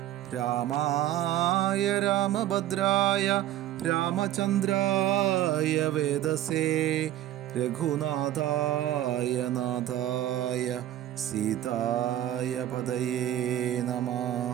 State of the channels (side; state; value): left; quieter; 12.9 dB